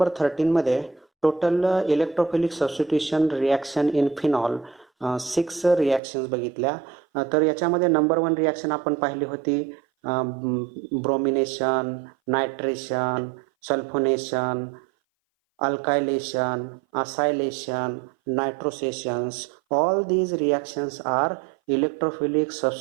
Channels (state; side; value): drops out; left; at 6.0 s